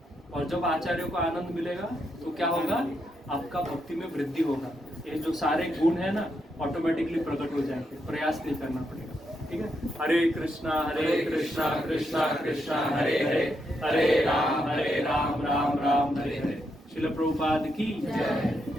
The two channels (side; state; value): both; normal; correlation 0.81